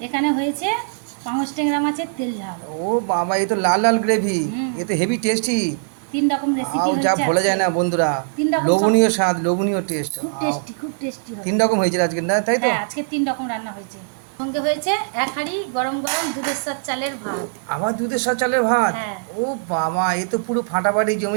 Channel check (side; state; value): left; silent; digital silence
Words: এখানে হয়েছে পাঙস ট্যাংরা মাছের তেল ঝাল। ও বাবা, এ তো লাল লাল গ্রেভি। এ তো হেভি টেস্টি। 3 রকম রেসিপি যা হয়েছে। বলা যায় না বন্ধুরা। 3 রকম লোভনীয় স্বাদ, লোভনীয় টেস্ট। খুব টেস্টি হবে। 3 রকম হয়েছে আজকে, না তাই তো? হ্যাঁ, আজকে 3 রকম রান্না হয়েছে। সঙ্গে হয়েছে এক হাঁড়ি গরম গরম দুধের সাথে চালের ভাত। আবার দুধের সাথে চালের ভাত। হ্যাঁ। ও বাবা, এ তো পুরো ফাটাফাটি